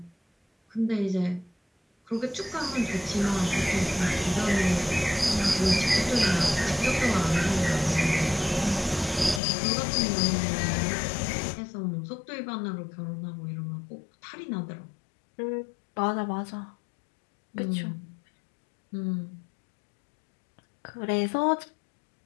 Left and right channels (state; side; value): drops out; right; at 9.4 s